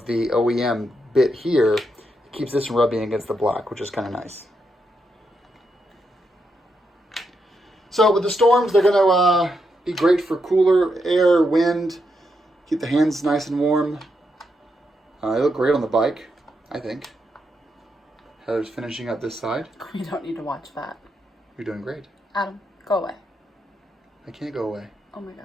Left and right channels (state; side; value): normal; both; correlation 0.82